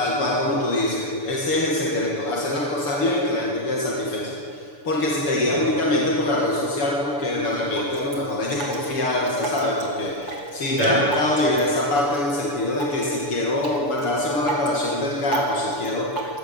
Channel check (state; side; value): late; right; 6.9 ms